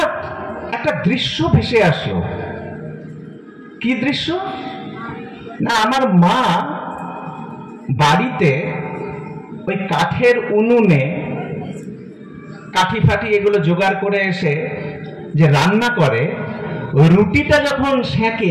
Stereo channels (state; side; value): identical; both; correlation 1.00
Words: একটা দৃশ্য ভেসে আসলো। কি দৃশ্য? না, আমার মা বাড়িতে ওই কাঠের উনুনে কাঠি ফাটি এগুলো জোগাড় করে এসে যে রান্না করে, ওই রুটিটা যখন